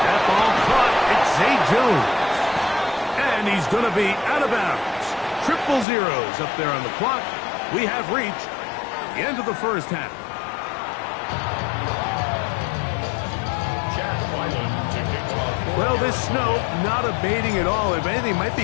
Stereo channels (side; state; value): right; drops out; at 5.9 s